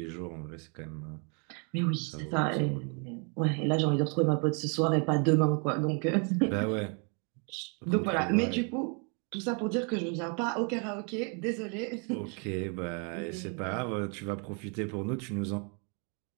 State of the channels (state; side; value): quieter; left; 37.3 dB